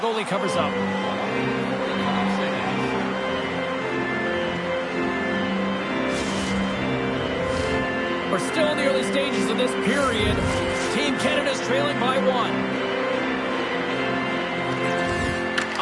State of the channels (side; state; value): both; identical; correlation 1.00